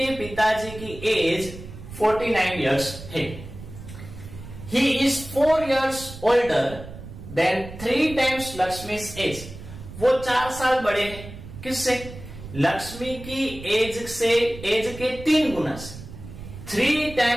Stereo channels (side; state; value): right; noise; rumble, 13 dB below the sound